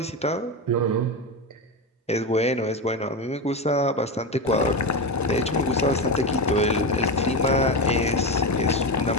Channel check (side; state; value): both; normal; correlation 0.17